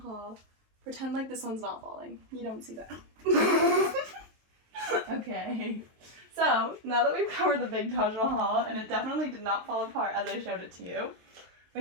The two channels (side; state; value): left; late; 23 ms